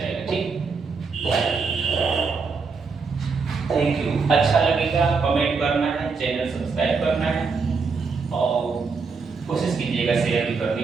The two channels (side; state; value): left; quieter; 4.9 dB